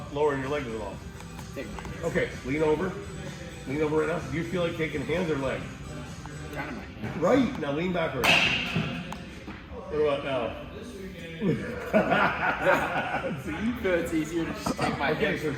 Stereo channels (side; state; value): both; identical; correlation 1.00